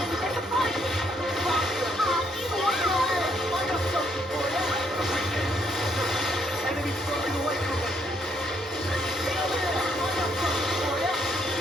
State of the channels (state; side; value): normal; both; correlation 0.72